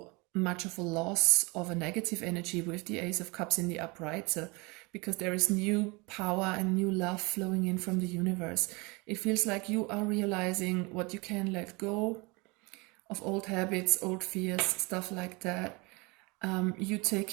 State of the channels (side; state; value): left; quieter; 26.9 dB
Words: much of a loss of a negative energy with the Ace of Cups in the upright, so because there is new power and new love flowing in from the universe. It feels like you are realizing what you can let go of, old habits, old fears, stuff like that. You